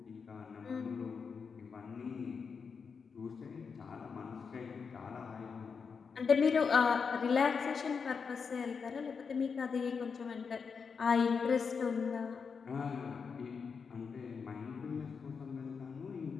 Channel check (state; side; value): quieter; right; 5.7 dB